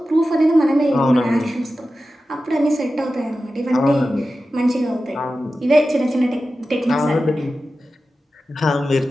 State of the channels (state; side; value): normal; both; correlation 0.93